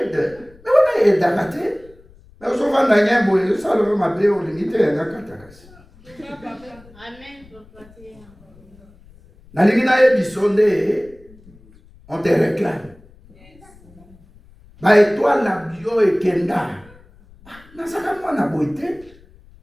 Mais on a aidé à rater. Mais on se voit dans un bout, ça le m'a payé au limite et un katakas. Amen. Na lingina ebisonde, on te réclame. Ba étoile na bio et kenda. Na saka moi na boité.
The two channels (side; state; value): left; noise; rumble, 26 dB below the sound